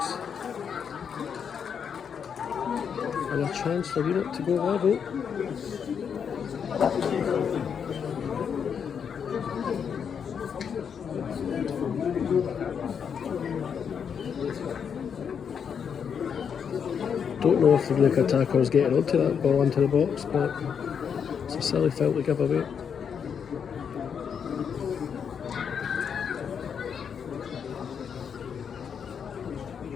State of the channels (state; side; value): quieter; right; 7.2 dB